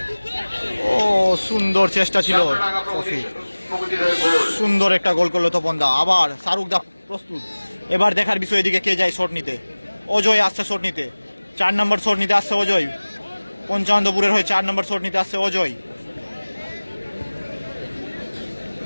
ও সুন্দর চেষ্টা ছিল সফি, সুন্দর একটা গোল করলো তপন দা। আবার শাহরুখ দা প্রস্তুত, এবার দেখার বিষয় এদিকে কে যায় শট নিতে। অজয় আসছে শট নিতে, 4 নম্বর শট নিতে আসছে অজয়। পঞ্চানন্দপুরের হয়ে 4 নম্বর শট নিতে আসছে অজয়।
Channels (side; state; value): both; inverted; correlation -1.00